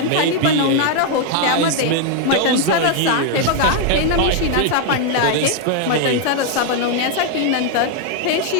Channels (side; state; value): both; different; correlation 0.00